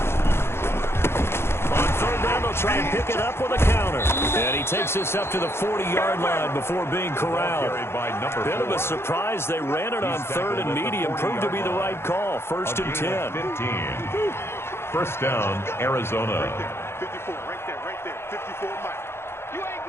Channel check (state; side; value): late; right; 0.12 ms